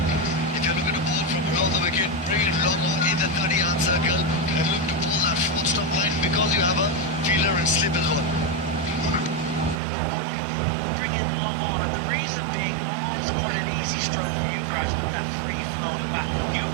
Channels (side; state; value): left; drops out; at 9.8 s